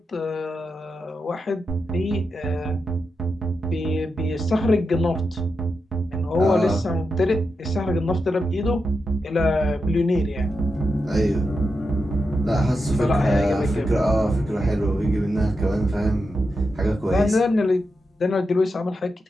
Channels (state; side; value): normal; both; correlation 0.87